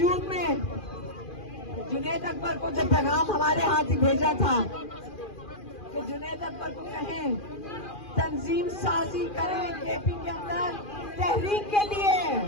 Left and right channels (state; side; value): late; right; 2.4 ms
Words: जून में जुनैद अकबर को जब पैगाम हमारे हाथ ही भेजा था कि जुनैद अकबर को कहें तंजीम साजी करें केपी के अंदर तहरीक के लिए,